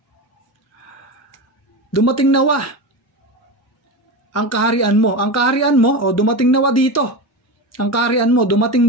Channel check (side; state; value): both; normal; correlation 0.22